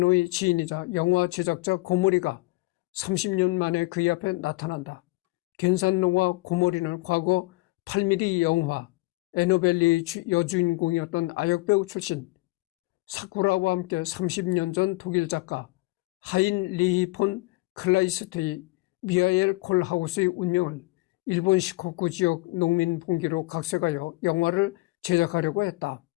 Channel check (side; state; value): right; quieter; 22.4 dB